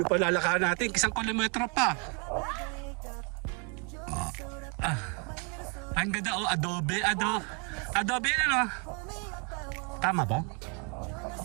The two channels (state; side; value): quieter; left; 35.6 dB